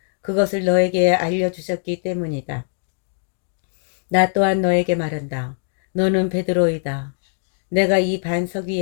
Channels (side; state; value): right; silent; digital silence